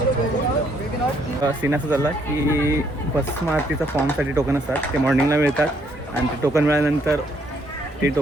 सीन असं झाला की भस्म आरतीचा फॉर्मसाठी टोकन असतात, ते मॉर्निंगला मिळतात, आणि ते टोकन मिळाल्यानंतर ते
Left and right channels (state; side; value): normal; both; correlation 0.69